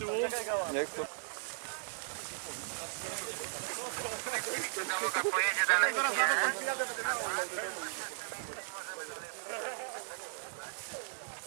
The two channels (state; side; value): silent; left; digital silence